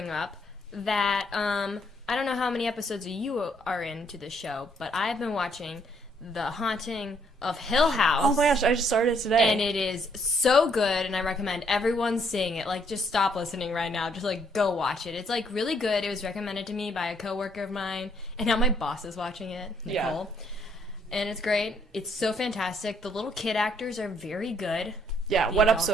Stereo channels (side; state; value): both; normal; correlation 0.69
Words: up that, I don't know how many episodes you are into the show, but I've been watching The Haunting of Hill House. Oh my gosh, I just started today. And it is so good, and I recommend everyone seeing it. Like, just stop listening right now. Just, like, go watch it. It's, like, really good. It was recommended to me by a coworker of mine, and now my boss is watching it, Nicole. Yeah. And it's great. It's so fantastic. The little kid actors are very good. Yeah, what